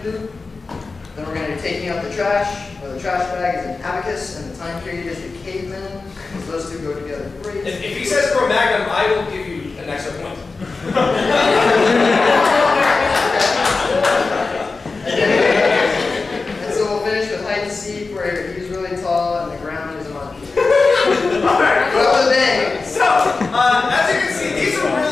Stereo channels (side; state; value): right; quieter; 4.0 dB